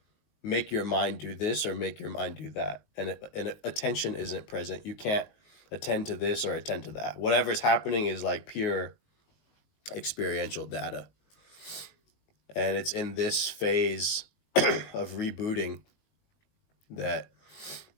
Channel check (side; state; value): right; late; 19 ms